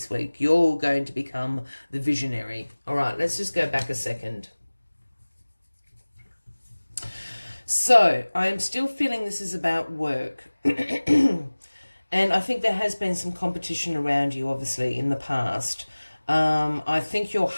week. You're going to become the visionary. All right, let's just go back a second. So I am still feeling this is about work. And I think there has been some competition around you, obviously, in the past. I think your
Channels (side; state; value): both; inverted; correlation -1.00